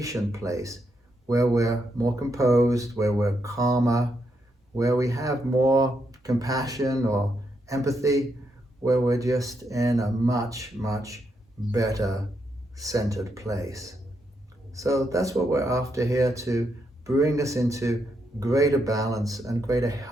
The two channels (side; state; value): both; normal; correlation 0.80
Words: place where we're more composed, where we're calmer, where we have more compassion or empathy, where we're just in a much, much better centered place. So that's what we're after here, to bring us into greater balance and greater